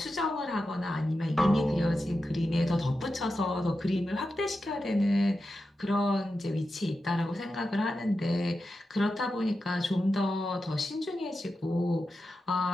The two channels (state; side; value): normal; both; correlation 0.90